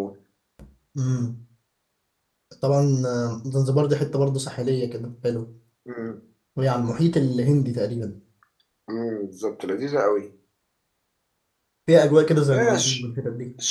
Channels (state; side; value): identical; both; correlation 1.00